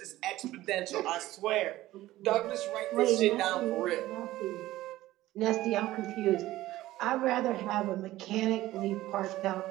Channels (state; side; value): quieter; left; 16.0 dB